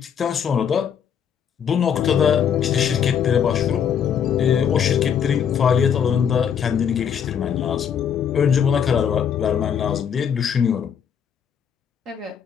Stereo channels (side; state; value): right; quieter; 8.0 dB